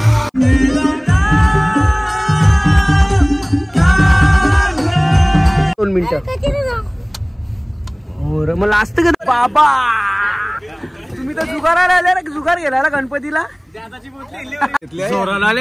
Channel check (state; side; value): identical; both; correlation 1.00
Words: मला असतं का बाबा तुम्ही तर जुगाराला आले ना जुगार गेला गणपतीला जोराला